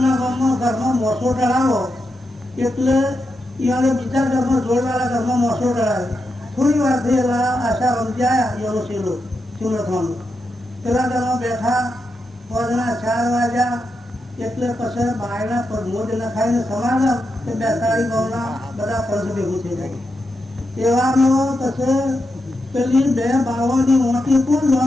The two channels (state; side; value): normal; both; correlation 0.86